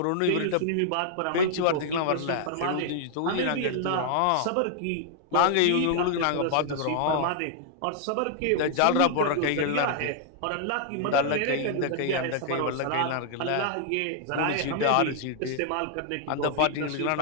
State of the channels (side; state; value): both; different; correlation -0.01